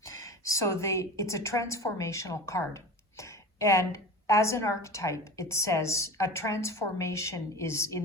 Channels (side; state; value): both; normal; correlation 0.33